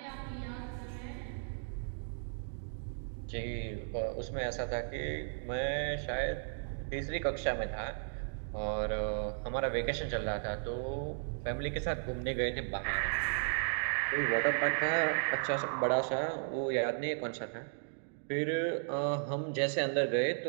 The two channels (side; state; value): left; silent; digital silence